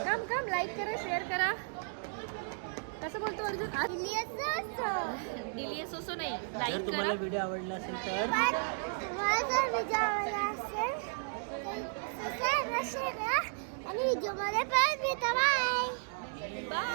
काम लाईक करा शेअर करा. कसं बोलतो अर्जुन? डिलियस असो नाही जर लाईक तुम्हाला करा. व्हिडिओ आवडला असेल तर आणि व्हिडिओ मध्ये पण भेटा. बाय.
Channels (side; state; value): left; silent; digital silence